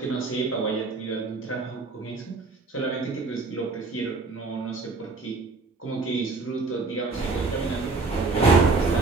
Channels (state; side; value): quieter; left; 3.9 dB